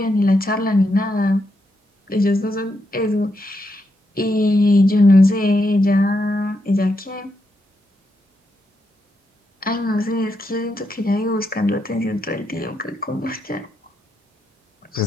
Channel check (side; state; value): both; normal; correlation 0.82